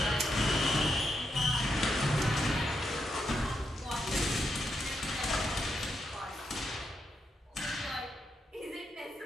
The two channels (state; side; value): normal; both; correlation 0.82